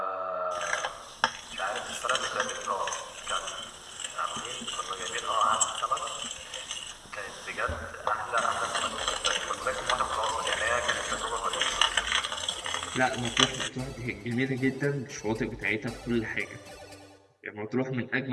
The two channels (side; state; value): both; identical; correlation 1.00